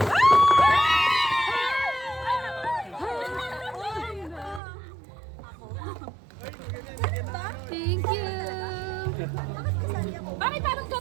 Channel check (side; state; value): left; drops out; at 4.6 s